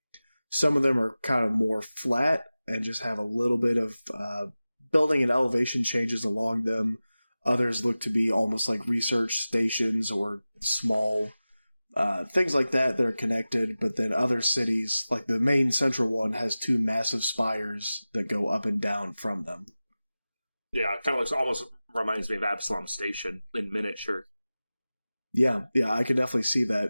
some of them are kind of more flat and just have a little bit of building and elevation changes along them. Others look to be almost like research stations or small things like that are connected. But then other cities, like the main central one, has 2 massive spires that go up and down from them. Yeah, it kind of looks, almost reminds me of Absalom Station in miniature. Yeah, I can definitely see that.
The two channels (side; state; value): both; inverted; correlation -0.96